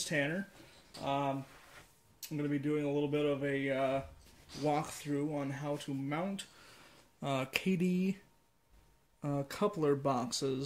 Tanner. I'm going to be doing a little bit of a walkthrough on how to mount Kadee coupler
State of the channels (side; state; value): both; identical; correlation 1.00